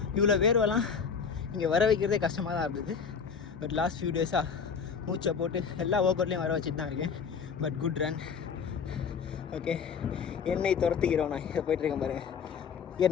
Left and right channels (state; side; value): quieter; right; 6.3 dB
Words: இவ்வளோ வேர்வெல்லாம் இங்கே வர வைக்கிறதே கஷ்டமாக தான் இருந்தது. பட் லாஸ்ட் ஃபியூ டேஸாக மூச்சை போட்டு எல்லா ஒர்க் அவுட்லேயும் வர வச்சுட்டு தான் இருக்கேன். But good run. ஓகே, என்னை துரத்துக்கிறோம். நான் இதை போய்ட்டுருக்கேன் பாருங்கள்.